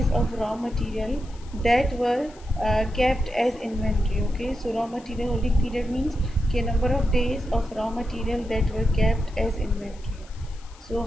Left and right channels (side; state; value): left; noise; hiss, 25 dB below the sound